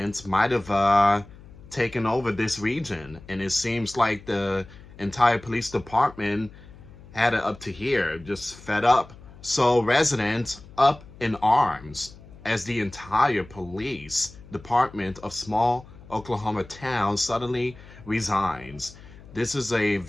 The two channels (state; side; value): noise; left; hum, 20 dB below the sound